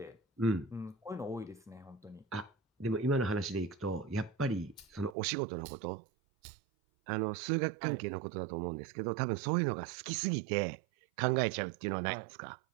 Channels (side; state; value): left; drops out; at 5.2 s